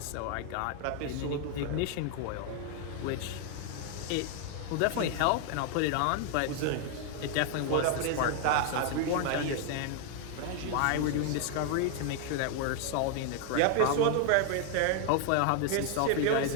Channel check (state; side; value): different; both; correlation 0.00